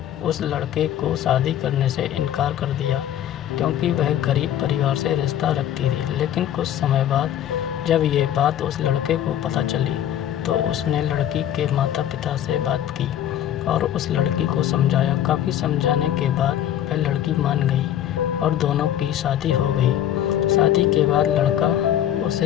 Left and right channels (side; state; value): right; quieter; 11.1 dB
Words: उस लड़के को शादी करने से इनकार कर दिया, क्योंकि वह गरीब परिवार से रिश्ता रखती थी। लेकिन कुछ समय बाद जब ये बात उस लड़के को पता चली, तो उसने लड़की के माता पिता से बात की और उस लड़की को समझाया। काफ़ी समझाने के बाद वह लड़की मान गई और दोनों की शादी हो गई। शादी के बाद लड़का